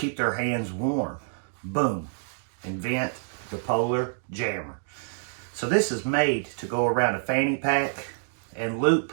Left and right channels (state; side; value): silent; left; digital silence